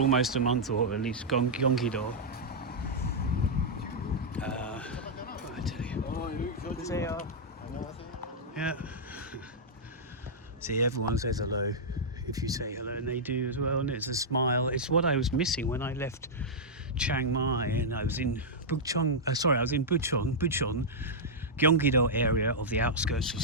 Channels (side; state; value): both; normal; correlation -0.08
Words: a month, or at least Gyeonggi-do. I tell you. They are. Yeah. See, everyone says hello if you say hello, and they do as well, and it's a smile. It's what I was missing when I left Chiang Mai, and I was in Bucheon, Gyeonggi-do area of the outskirts of